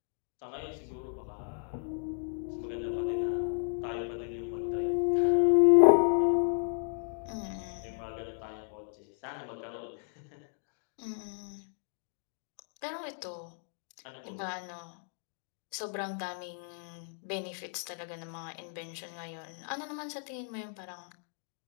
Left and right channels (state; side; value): silent; right; 55 dB below the other